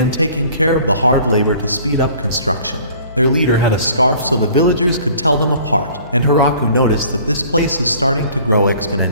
taking care of the hard labor to speed up construction. Their leader had a scarf so the villagers could tell them apart, and Hiraku noticed that this place is starting to grow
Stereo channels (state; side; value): inverted; both; correlation -0.51